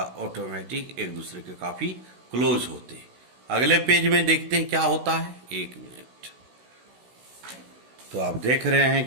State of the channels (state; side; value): late; left; 16 ms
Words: ऑटोमेटिक एक दूसरे के काफी क्लोज होते हैं। अगले पेज में देखते हैं क्या होता है। एक मिनट। तो आप देख रहे हैं